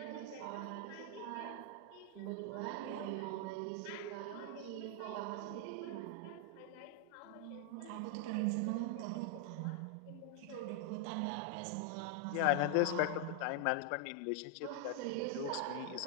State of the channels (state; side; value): different; both; correlation 0.00